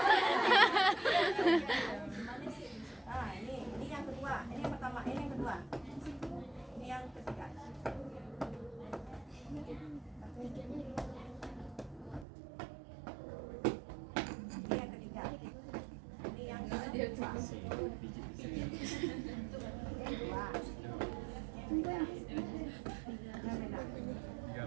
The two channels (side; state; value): left; drops out; at 12.2 s